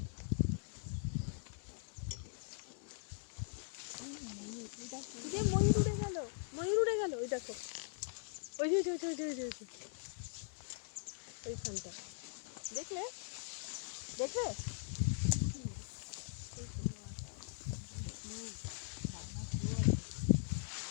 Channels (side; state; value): right; silent; digital silence